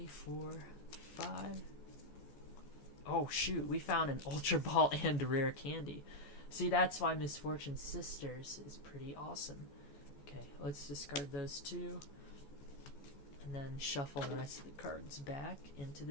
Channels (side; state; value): right; late; 14 ms